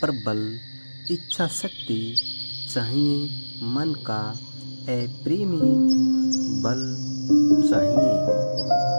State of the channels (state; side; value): inverted; both; correlation -1.00